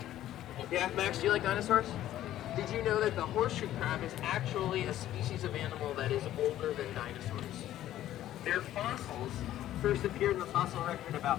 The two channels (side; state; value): right; quieter; 13.0 dB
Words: Yeah, Max, do you like dinosaurs? Did you know that the horseshoe crab is actually a species of animal that is older than dinosaurs? Their fossils first appeared in the fossil record